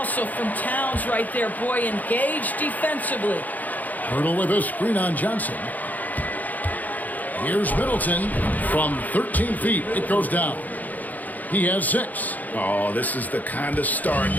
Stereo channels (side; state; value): right; late; 0.081 ms